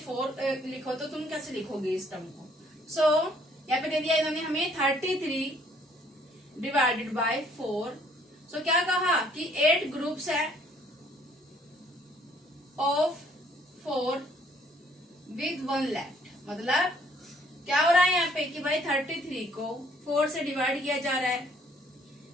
लिखो, तो तुम कैसे लिखोगे इस टर्म को। सो यहाँ पे दे दिया इन्होंने हमें 33 डिवाइडेड बाय 4। सो क्या कहा कि 8 ग्रुप्स है ऑफ 4 विद 1 लेफ्ट। मतलब क्या हो रहा है यहाँ पे कि भाई 33 को 4 से डिवाइड किया जा रहा है,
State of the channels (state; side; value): normal; both; correlation 0.62